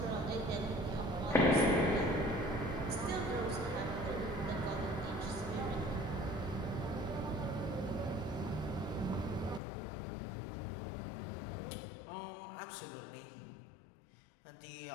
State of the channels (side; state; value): right; drops out; at 9.6 s